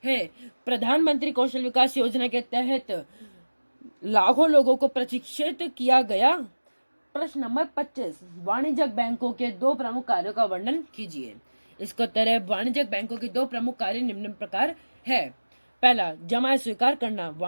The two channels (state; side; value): inverted; both; correlation -1.00